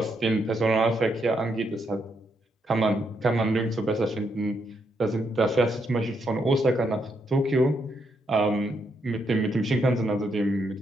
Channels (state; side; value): normal; both; correlation 0.78